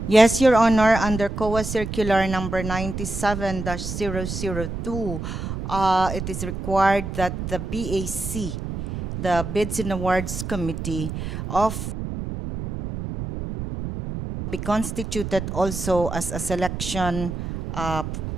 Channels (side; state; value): right; noise; rumble, 6 dB below the sound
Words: Yes, Your Honor, under COA Circular number 97-002, it is required that the BAC, the Bids and Awards Committee, be constituted also as a selection